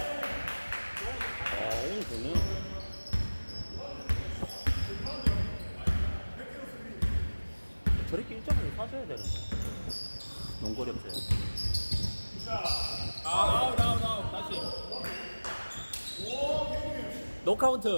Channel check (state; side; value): inverted; both; correlation -1.00